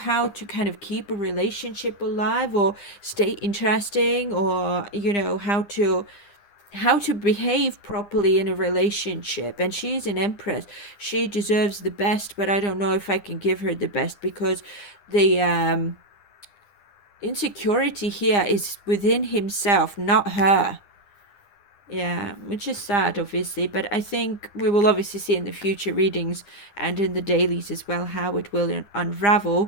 to kind of keep a relationship alive or stay interesting, or how to behave properly in a relationship. And she's an Empress. She deserves the best, but I don't know if I can give her the best, because the insecurity here is within himself, not her. Yeah, which is sad, obviously, but I think we will obviously see in the future readings and in the dailies as well how it will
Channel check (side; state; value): right; late; 9.9 ms